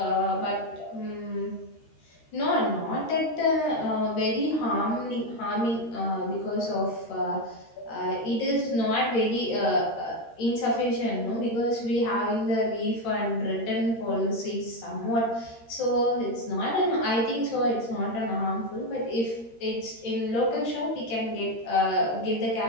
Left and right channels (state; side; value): late; right; 13 ms